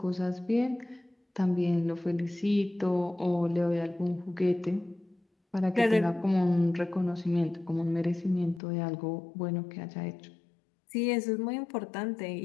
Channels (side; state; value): right; drops out; at 8.6 s